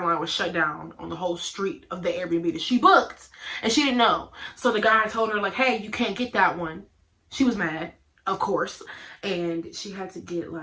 was shut down on the whole street of the Airbnb that she booked, and she didn't know. So the guy told her, like, hey, you can't get that one. She was mad, of course, and she had to get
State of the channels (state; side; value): identical; both; correlation 1.00